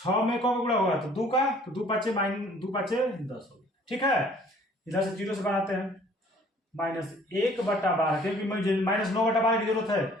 में कौन गुणा होगा, तो 2 का, तो 2 5 10 हो गया। ठीक है, इधर से 0 से बनाते हैं, -1/12, क्योंकि मुझे -9/12 की जरूरत है,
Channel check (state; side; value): normal; both; correlation 0.55